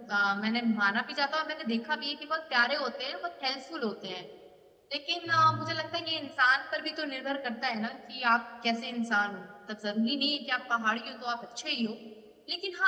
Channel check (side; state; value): both; identical; correlation 1.00